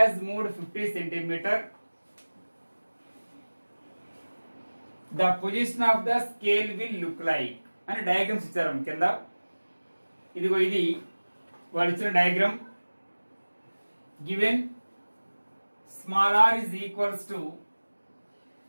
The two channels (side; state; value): both; inverted; correlation -1.00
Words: moved 50 centimeter, the position of the scale will look like అని డయాగ్రామ్స్ ఇచ్చారు కింద. ఇదిగో ఇది వాళ్ళు ఇచ్చిన diagram. Given small r is equals to